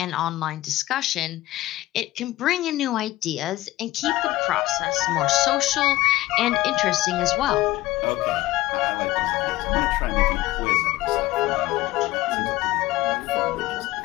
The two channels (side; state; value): right; quieter; 17.0 dB